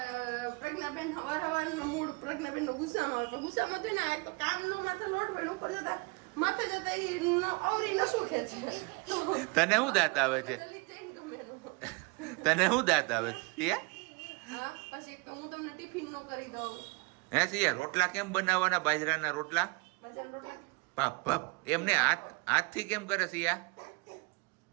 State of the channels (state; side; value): quieter; left; 28.0 dB